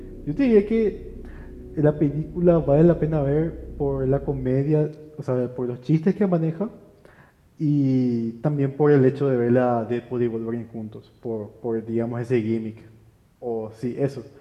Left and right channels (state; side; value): identical; both; correlation 1.00